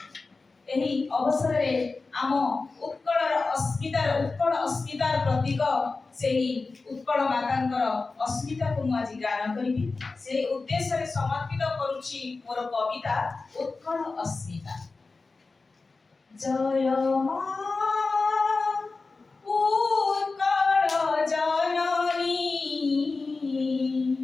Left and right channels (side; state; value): right; quieter; 3.9 dB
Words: ଏହି ଅବସରରେ ଆମ ଉତ୍କଳ ଅସ୍ମିତାର ପ୍ରତୀକ ସେହି ଉତ୍କଳ ମାତାଙ୍କର ଅସ୍ମିତାକୁ ମୁଁ ଆଜି ଗାନ କରିବି। ସେହି ଉଦ୍ଦେଶ୍ୟରେ ସମର୍ପିତ କରୁଛି ମୋର କବିତା ଉତ୍କଳ ଅସ୍ମିତା। ଜୟ ମା ଉତ୍କଳ ଜନନୀ,